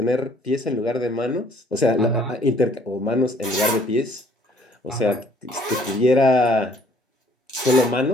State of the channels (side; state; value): both; normal; correlation 0.59